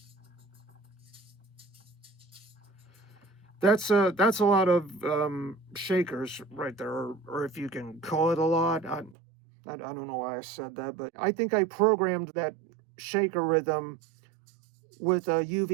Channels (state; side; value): drops out; left; at 9.2 s